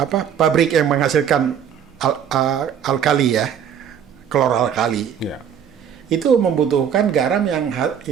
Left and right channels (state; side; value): quieter; left; 8.4 dB